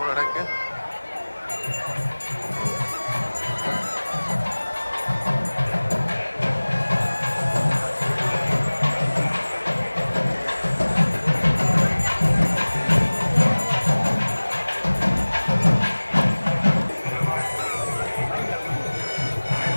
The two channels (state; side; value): inverted; both; correlation -1.00